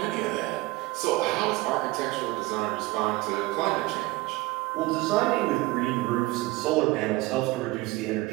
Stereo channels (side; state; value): left; quieter; 20.5 dB